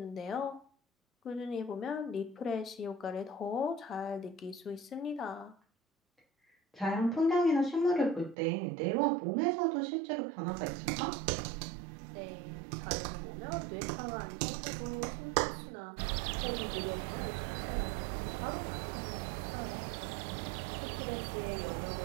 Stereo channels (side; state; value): left; drops out; at 8.3 s